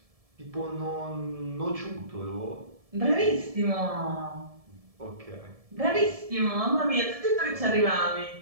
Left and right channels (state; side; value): late; left; 1.7 ms